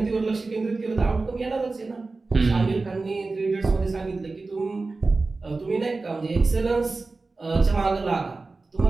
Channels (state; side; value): quieter; left; 3.7 dB